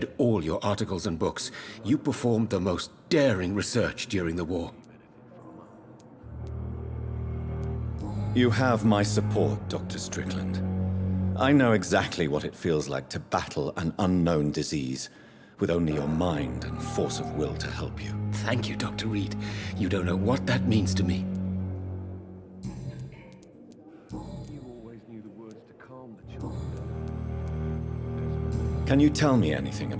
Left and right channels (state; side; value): identical; both; correlation 1.00